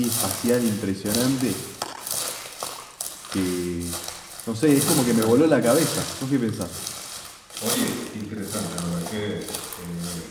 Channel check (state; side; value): identical; both; correlation 1.00